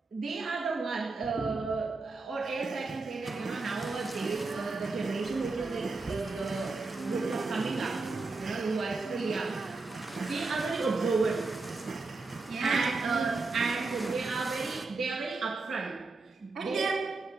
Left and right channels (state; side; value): quieter; left; 3.7 dB